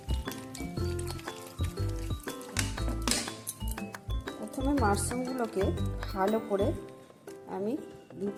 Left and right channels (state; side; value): identical; both; correlation 1.00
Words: প্রথমে মাশরুমগুলোকে ভালো করে আমি 2